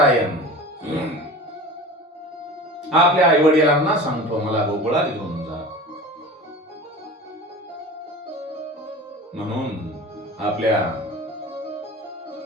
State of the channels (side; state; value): both; normal; correlation 0.36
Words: आपल्या आई वडिलांना सांगतो, मला गोकुळात घेऊन जा. म्हणून आपल्या